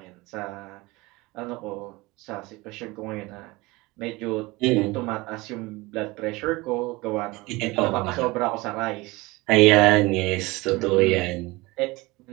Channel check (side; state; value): left; quieter; 22.4 dB